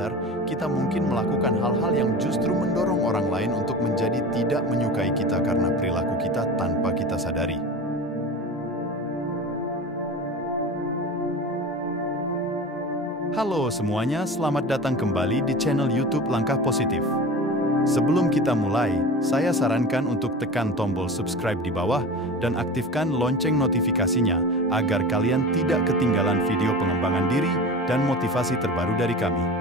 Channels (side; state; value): both; normal; correlation 0.32